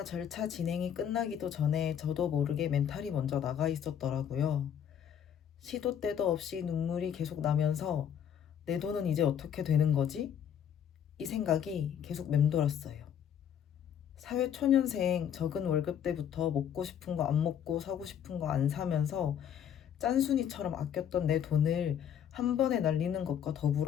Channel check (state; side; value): quieter; right; 9.0 dB